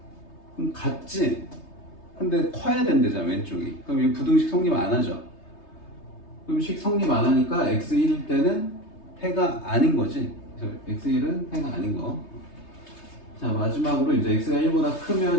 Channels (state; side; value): late; right; 3.3 ms